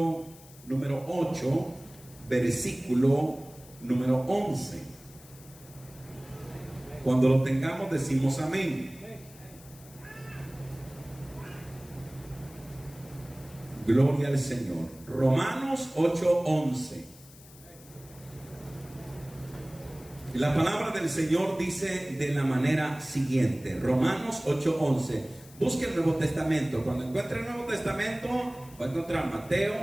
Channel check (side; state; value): left; noise; hiss, 22 dB below the sound